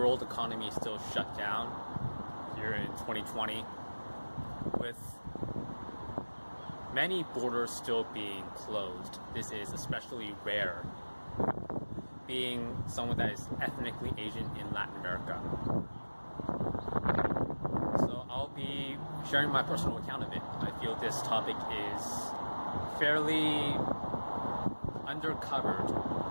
economy is still shut down here in 2020, with many borders still being closed. This is especially rare, being someone that is ethnically Asian in Latin America. So I'll be sharing my personal account of it. I feel this topic is fairly undercovered,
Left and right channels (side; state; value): both; inverted; correlation -1.00